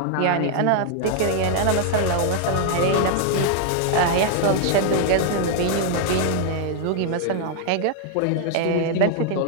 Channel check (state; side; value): different; both; correlation 0.00